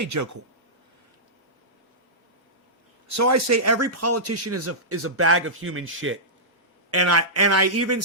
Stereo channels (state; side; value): normal; both; correlation -0.15